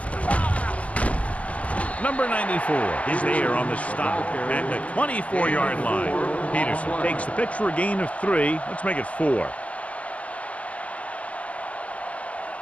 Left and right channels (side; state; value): right; late; 0.066 ms